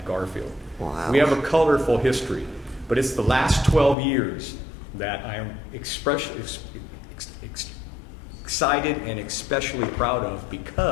Garfield. Wow. We have a colorful history, but it's the last 12 years that I am excited and especially proud of,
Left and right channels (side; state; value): right; drops out; at 4.0 s